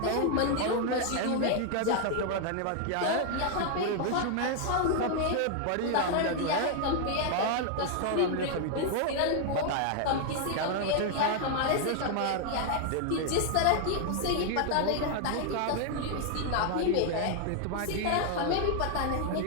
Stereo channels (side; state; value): both; different; correlation 0.00